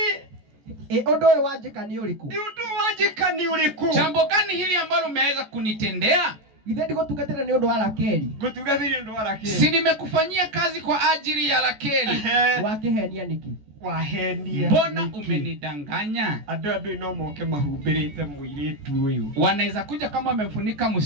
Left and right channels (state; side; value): late; left; 14 ms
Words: ni undu uyu wanjika ni uriku? ni undu wanjika ni uriku? jambo gani hili ambalo umeweza kunitendea? Githe ndigutungatira ni undu wa Rakeli? Ngutungatira ni undu wa Rakeli. Si nimekufanyia kazi kwa ajili ya Rakeli. Wakihenia niki? Wahenia. Mbona umenidanganya? Andu no moke mahumbirite muiritu uyu, wanaweza kuja kama wamemfunika